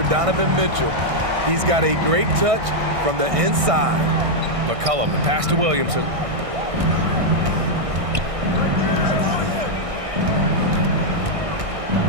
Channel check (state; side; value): late; left; 1.6 ms